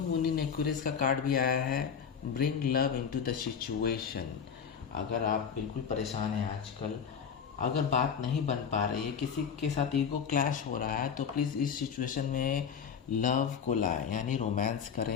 मून इन एक्वेरियस का कार्ड भी आया है, bring love into the situation. अगर आप बिल्कुल परेशान हैं आजकल, अगर बात नहीं बन पा रही है, किसी के साथ ईगो क्लैश हो रहा है, तो प्लीज़ इस सिचुएशन में लव को लाए, यानी रोमांस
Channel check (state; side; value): quieter; right; 7.1 dB